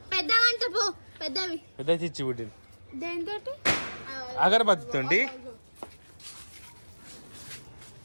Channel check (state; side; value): inverted; both; correlation -1.00